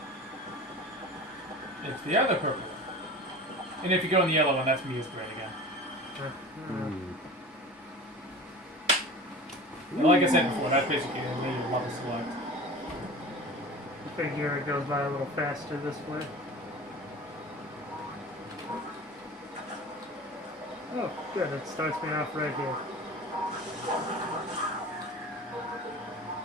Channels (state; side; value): normal; both; correlation 0.36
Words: It's the other purple one. And if you go in the yellow one, that's Mia's grade again. And like I said before, that's basically a major level select. I figure it goes by a little faster this way. Oh, good. It starts me off right here.